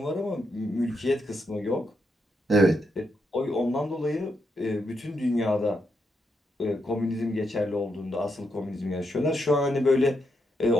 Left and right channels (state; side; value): normal; both; correlation 0.81